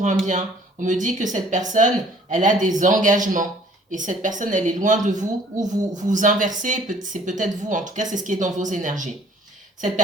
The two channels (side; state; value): both; normal; correlation 0.56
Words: un bien. On me dit que cette personne, elle a des engagements. Et cette personne, elle est loin de vous, ou vous inversez, c'est peut-être vous, en tout cas, c'est ce qui est dans vos énergies. Cette